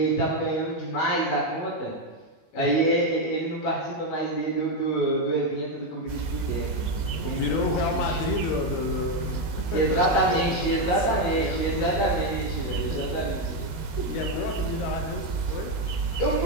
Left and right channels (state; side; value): late; right; 19 ms